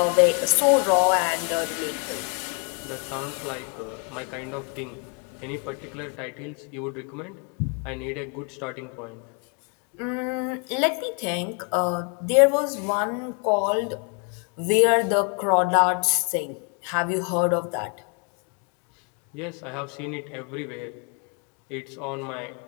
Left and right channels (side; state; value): right; quieter; 37.5 dB